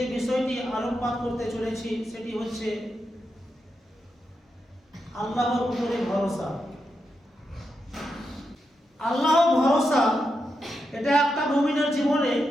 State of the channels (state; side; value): normal; both; correlation 0.86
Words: বিষয়টি আলোকপাত করতে চলেছি সেটি হচ্ছে আল্লাহর উপরে ভরসা। আল্লাহ ভরসা এটা একটা মুমিনের জীবনে